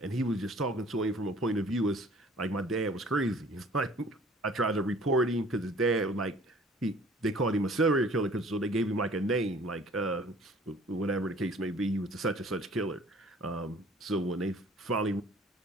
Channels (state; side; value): normal; both; correlation 0.52